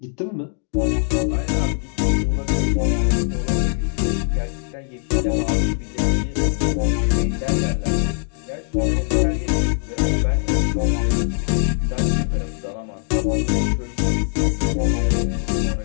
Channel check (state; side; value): silent; right; digital silence